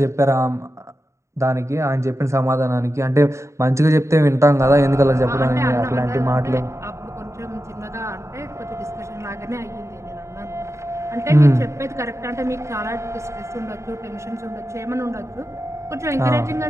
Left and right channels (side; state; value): left; late; 0.14 ms